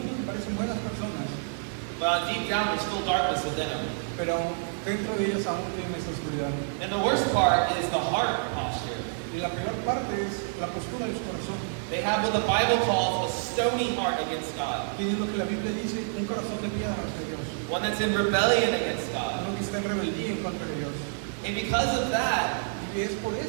que parecen buenas personas, but deep down there's still darkness within them. pero dentro de ellos aún tienen esa oscuridad. And the worst part is the heart posture. Y la peor parte es la postura de su corazón. They have what the Bible calls a stony heart against God, Tienen lo que la Biblia dice, un corazón de piedra hacia Dios. one that's in rebellion against God. Uno que está en rebeldía en contra de Dios. And because of that, Y es por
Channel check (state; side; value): silent; left; digital silence